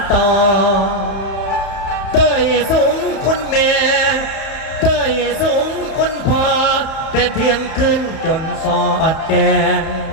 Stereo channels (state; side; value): late; right; 31 ms